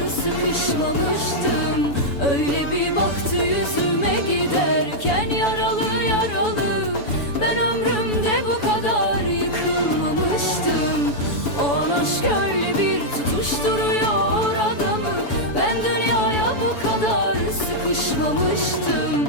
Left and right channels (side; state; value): right; late; 7.0 ms